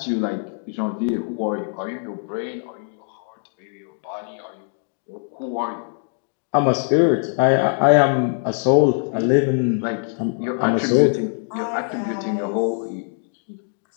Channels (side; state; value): right; silent; digital silence